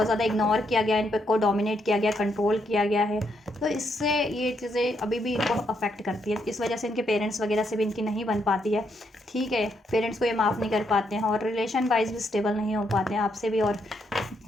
ज़्यादा इग्नोर किया गया, इन पर को डोमिनेट किया गया, कंट्रोल किया गया है, तो इससे ये चीज़ें अभी भी इनको अफेक्ट करती है। इस वजह से इनके पेरेंट्स वगैरह से भी इनकी नहीं बन पाती है, ठीक है। पेरेंट्स को ये माफ़ नहीं कर पाते हैं, और रिलेशन वाइज भी स्टेबल नहीं हो पाते हैं आपसे भी, और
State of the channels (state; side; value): normal; both; correlation 0.77